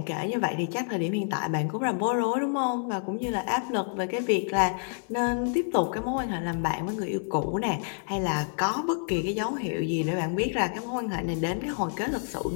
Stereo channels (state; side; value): silent; right; 59 dB below the other